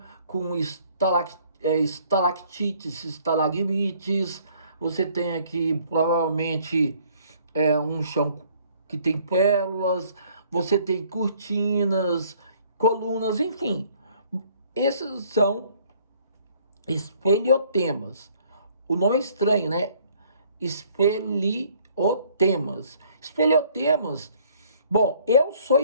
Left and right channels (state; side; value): inverted; both; correlation -0.60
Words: com estalactites, estalagmites. Você tem aqui provavelmente um chão que tem pérolas, você tem cortinas, colunas, enfim. Esses são espeliotemas. O nome é estranho, né? Espeliotemas. Espeliotemas. Bom, eu sou